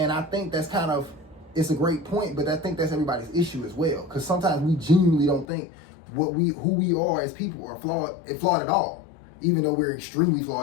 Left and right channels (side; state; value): right; drops out; at 5.5 s